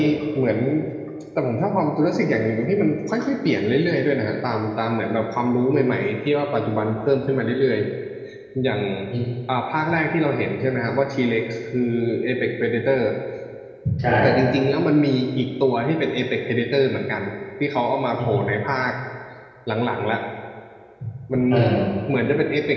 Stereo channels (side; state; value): both; identical; correlation 1.00